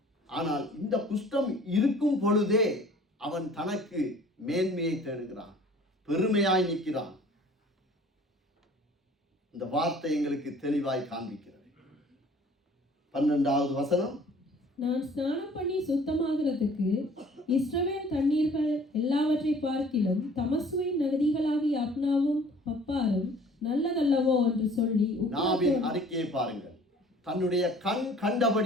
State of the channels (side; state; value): both; normal; correlation 0.52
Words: ஆனால் இந்த குஷ்டம் இருக்கும் பொழுதே அவன் தனக்கு மேன்மையை தேடுகிறான், பெருமையாய் நிற்கிறான். இந்த வார்த்தை எங்களுக்கு தெளிவாய் காண்பிக்கிறது. 12வது வசனம், நான் ஸ்நானம் பண்ணி சுத்தமாகிறதுக்கு இஸ்ரவேல் தண்ணீர்கள் எல்லாவற்றை பார்க்கிலும் தமசுவின் நதிகளாகிய அப்னாவும் பப்பாரும் நல்லதல்லவோ என்று சொல்லி நாவின் அறிக்கையை பாருங்கள். தன்னுடைய கண்